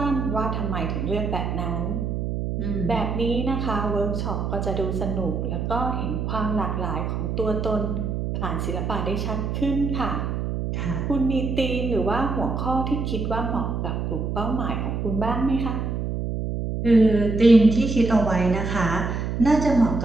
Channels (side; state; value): right; noise; hum, 2 dB below the sound